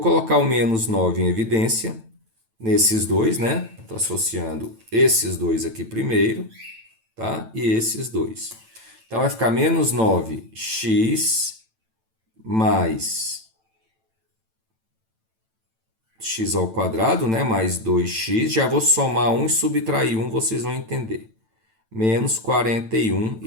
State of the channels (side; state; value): left; late; 9.0 ms